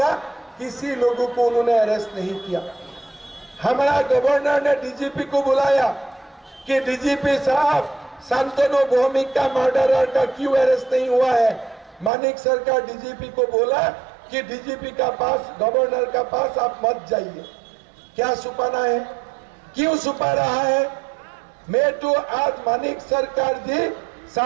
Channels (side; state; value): left; drops out; at 12.1 s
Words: किसी लोगों को उन्होंने अरेस्ट नहीं किया। हमारा गवर्नर ने डीजीपी को बुलाया कि डीजीपी साहब, शांतनु भौमिक का मर्डरर का क्यों अरेस्ट नहीं हुआ है। मानिक सरकार डीजीपी को बोला कि डीजीपी का पास, गवर्नर का पास आप मत जाइए। क्या छुपाना है, क्यों छुपा रहा है? मैं तो आज मानिक सरकार जी